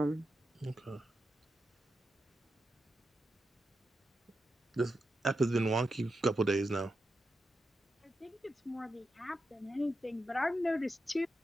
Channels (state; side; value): normal; both; correlation 0.88